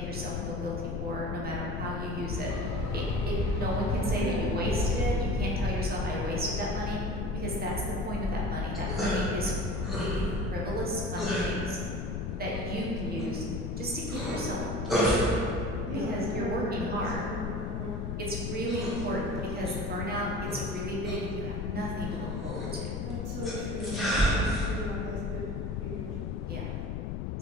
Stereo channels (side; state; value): left; noise; rumble, 2 dB below the sound